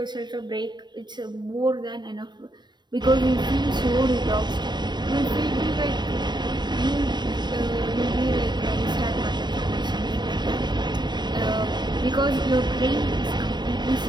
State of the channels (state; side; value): late; left; 0.21 ms